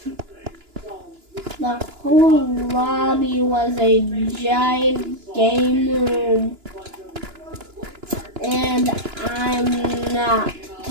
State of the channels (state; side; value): late; left; 2.9 ms